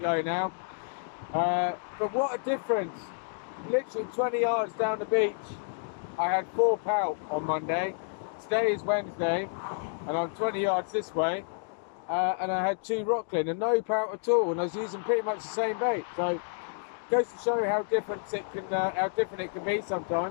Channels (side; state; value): right; silent; digital silence